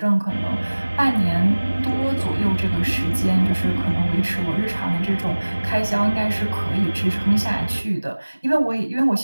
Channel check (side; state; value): both; inverted; correlation -1.00